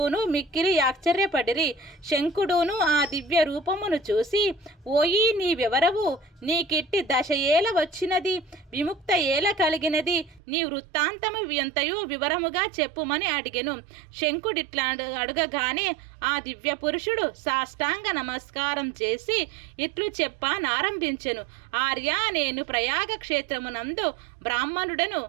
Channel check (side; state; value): left; drops out; at 10.4 s